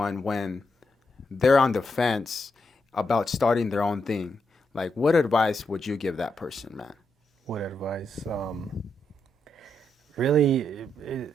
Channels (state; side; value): normal; both; correlation 0.82